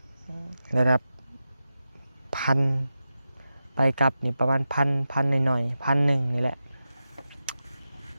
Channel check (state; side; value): inverted; both; correlation -0.92